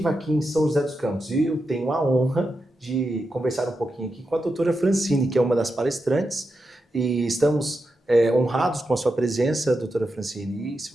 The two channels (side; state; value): both; normal; correlation 0.88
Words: aqui em São José dos Campos. E eu tenho a honra de conversar um pouquinho aqui com a doutora Francine, que é uma das palestrantes, e estamos honrados com a sua presença, doutora Francine. E